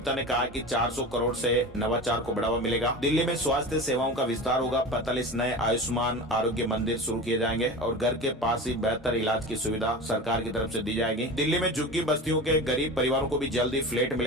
ने कहा कि 400 करोड़ से नवाचार को बढ़ावा मिलेगा। दिल्ली में स्वास्थ्य सेवाओं का विस्तार होगा। 45 नए आयुष्मान आरोग्य मंदिर शुरू किए जाएंगे और घर के पास ही बेहतर इलाज की सुविधा सरकार की तरफ से दी जाएगी। दिल्ली में झुग्गी बस्तियों के गरीब परिवारों को भी जल्दी फ्लैट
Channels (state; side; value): normal; both; correlation 0.31